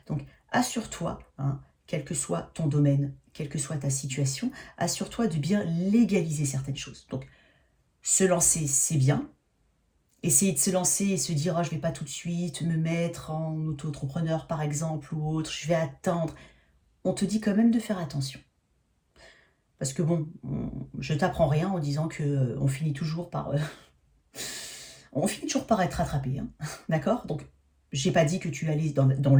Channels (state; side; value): identical; both; correlation 1.00